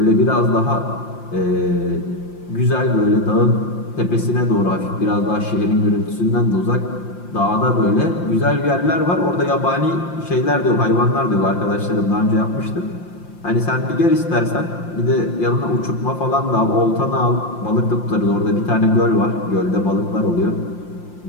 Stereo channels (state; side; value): late; right; 5.7 ms